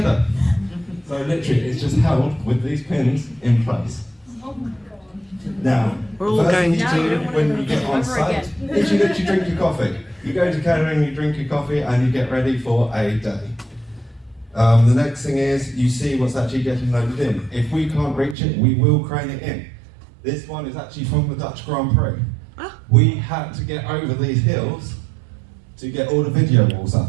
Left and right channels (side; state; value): left; drops out; at 18.4 s